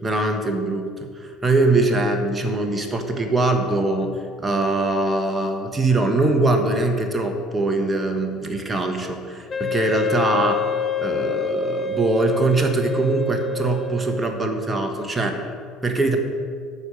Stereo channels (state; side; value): normal; both; correlation 0.59